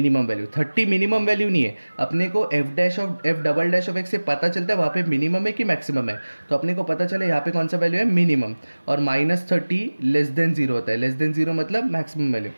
वैल्यू. 30 मिनिमम वैल्यू नहीं है, अपने को F double dash of x से पता चलता है वहाँ पे मिनिमम है कि मैक्सिमम है. तो अपने को पता चले यहाँ पे कौन सा वैल्यू है, मिनिमम. और माइनस 30 लेस देन जीरो होता है, लेस देन जीरो मतलब मैक्सिमम वैल्यू.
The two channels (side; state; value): both; inverted; correlation -1.00